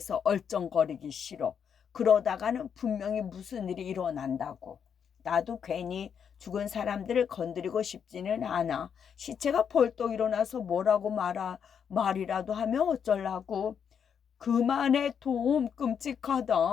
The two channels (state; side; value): quieter; right; 7.5 dB